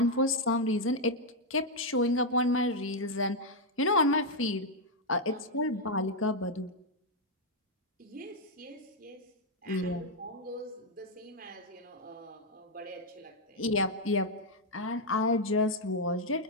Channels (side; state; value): both; normal; correlation 0.00